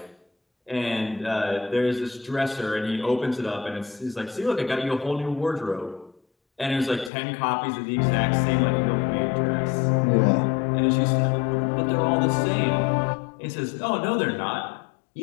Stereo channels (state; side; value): drops out; right; at 7.1 s